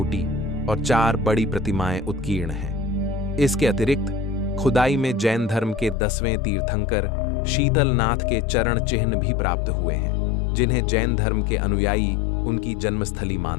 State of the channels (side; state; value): right; drops out; at 6.0 s